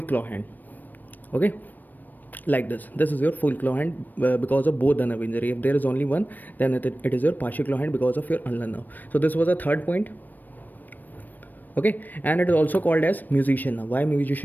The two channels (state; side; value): late; right; 0.088 ms